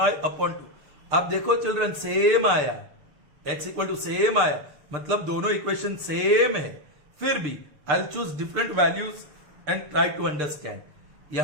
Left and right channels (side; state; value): left; late; 6.7 ms